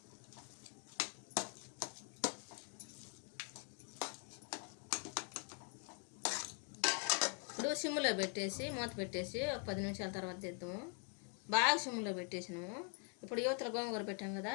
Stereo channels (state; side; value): quieter; right; 39.3 dB